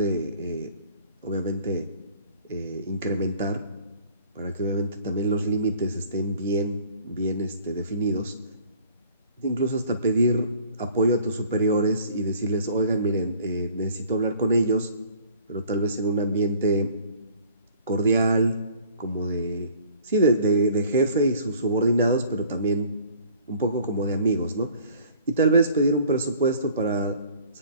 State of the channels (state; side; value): inverted; both; correlation -0.52